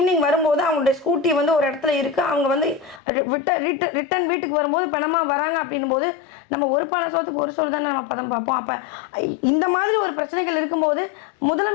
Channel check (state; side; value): drops out; right; at 3.0 s